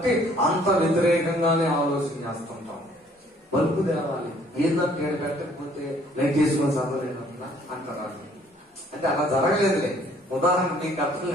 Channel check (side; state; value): both; normal; correlation 0.60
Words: అంత వ్యతిరేకంగానే ఆలోచన చేస్తుంటాం. బల్బు తేవాలి, ఏందంటే ఏడు పెట్టకపోతే లైట్ చేసుకుని చదవలేదన్నా అంటారు. అంటే అలా జరగలేదులే, ఉదాహరణ మీకు అర్థం